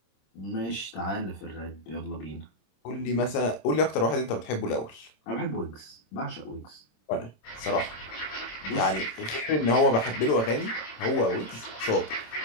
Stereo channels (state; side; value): late; right; 26 ms